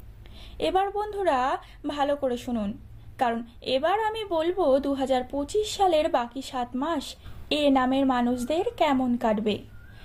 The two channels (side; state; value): both; identical; correlation 1.00